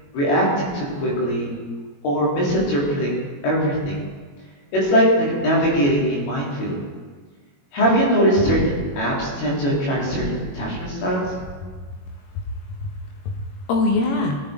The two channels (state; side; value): late; right; 21 ms